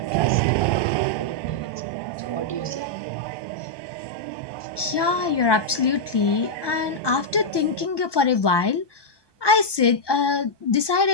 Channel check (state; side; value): late; right; 1.2 ms